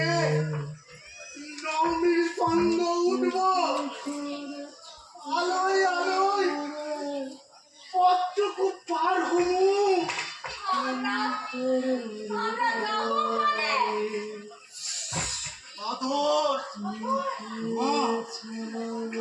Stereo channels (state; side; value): identical; both; correlation 1.00